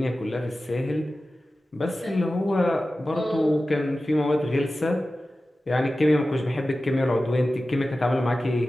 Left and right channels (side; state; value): both; normal; correlation 0.95